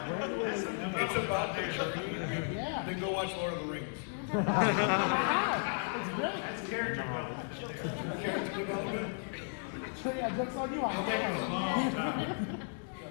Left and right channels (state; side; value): silent; right; 55 dB below the other